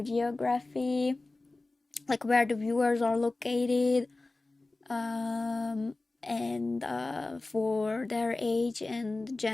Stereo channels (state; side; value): quieter; right; 3.2 dB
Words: geography, like where the viewers are located, and for their age and